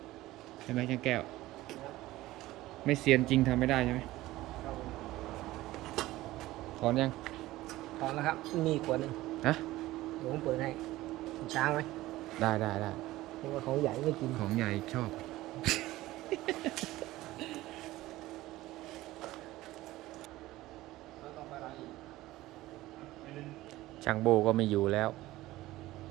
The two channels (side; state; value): left; quieter; 17.1 dB